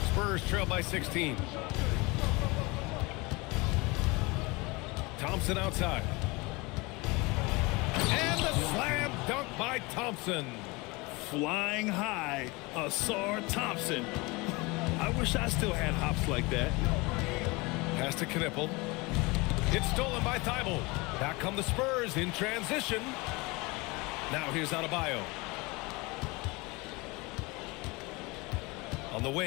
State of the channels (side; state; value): right; quieter; 25.1 dB